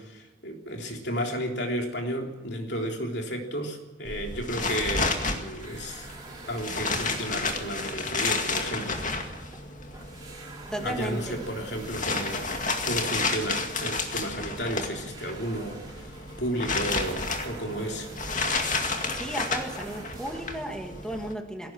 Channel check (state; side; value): normal; both; correlation 0.16